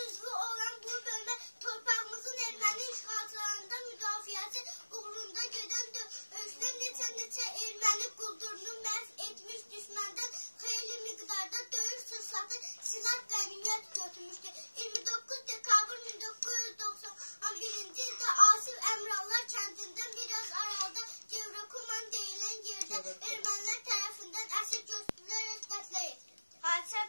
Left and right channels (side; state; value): both; inverted; correlation -1.00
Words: üzvü olan bu bölmə torpağımızın erməni işğalçılarından müdafiəsi uğrunda gedən döyüşdə neçə erməni quldurunu məhv etmiş, düşməndən xeyli miqdarda döyüş sursatı silah qənimət götürmüşdü. 29 dekabr 1991-ci ildə Asif Əmrallar kəndindən biraz aralıda Gevrokuman deyilən yerdə ermənilər tərəfindən əsir götürülərək qətlə yetirildi. Hadisə